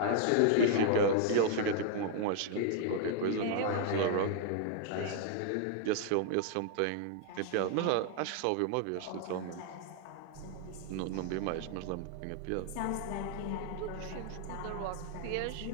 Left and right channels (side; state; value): both; different; correlation -0.01